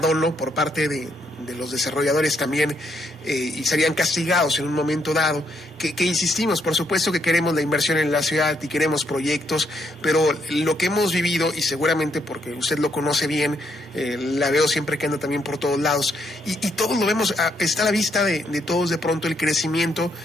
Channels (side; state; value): both; normal; correlation 0.75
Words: por parte de los desarrolladores también y serían castigados en un momento dado, que insistimos, por supuesto que queremos la inversión en la ciudad y queremos proyectos, pero lo que hemos vivido, y seguramente porque usted lo conoce bien, la veo siempre que anda también por todos lados, y todos lo vemos, está a la vista de todos de pronto el crecimiento,